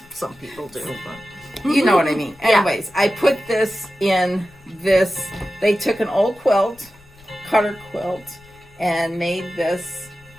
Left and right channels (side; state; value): left; noise; rumble, 26 dB below the sound